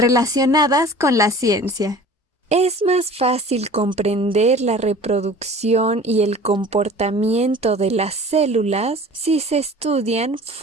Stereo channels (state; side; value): normal; both; correlation 0.43